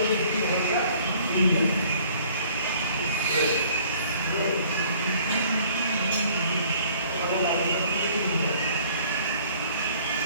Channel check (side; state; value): both; inverted; correlation -0.56